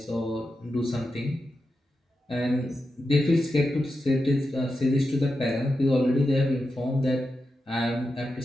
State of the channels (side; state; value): both; normal; correlation 0.89